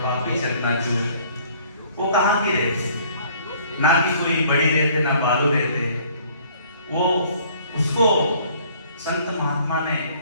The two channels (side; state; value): both; inverted; correlation -0.57